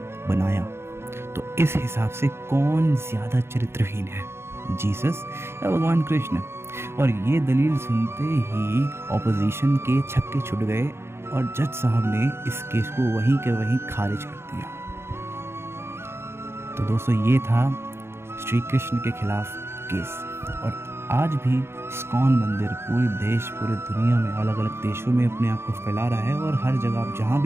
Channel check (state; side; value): late; left; 0.12 ms